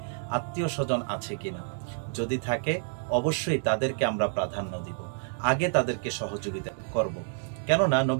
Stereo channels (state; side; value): silent; left; digital silence